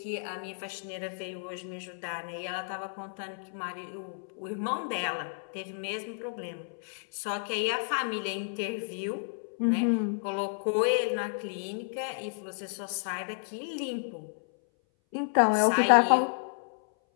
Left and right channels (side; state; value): right; silent; 57 dB below the other